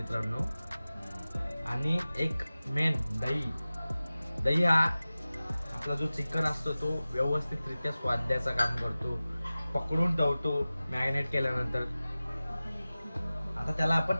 आणि एक मेन दही. दही हा आपला जो चिकन असतो तो व्यवस्थितरित्या स्वाद द्यायचं काम करतो, पकडून ठेवतो मॅरिनेट केल्यानंतर. आता त्याला आपण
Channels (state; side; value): inverted; both; correlation -0.97